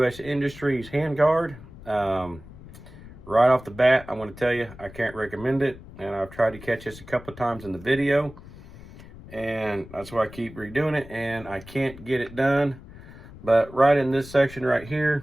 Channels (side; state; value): left; noise; rumble, 18 dB below the sound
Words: Industries handguard. Right off the bat, I'm going to tell you, I can't recommend it. And I've tried to catch this a couple of times in the video. And that's why I keep redoing it. And I can't get it done. But right in this section right here,